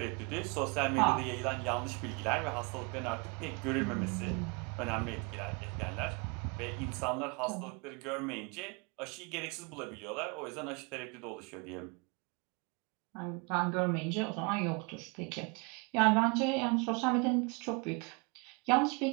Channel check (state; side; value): quieter; left; 30.7 dB